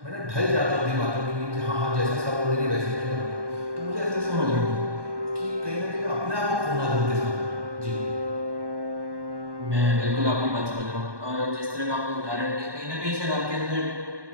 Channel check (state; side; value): late; left; 1.2 ms